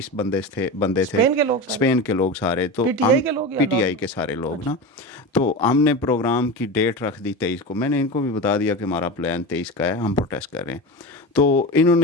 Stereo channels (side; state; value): both; normal; correlation 0.25